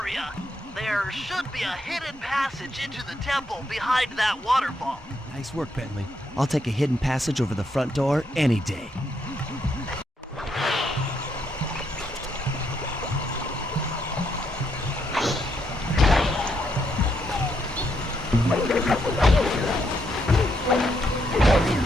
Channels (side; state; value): both; normal; correlation 0.77